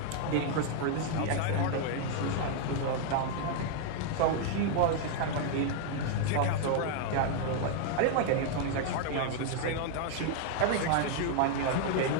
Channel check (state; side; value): different; both; correlation 0.00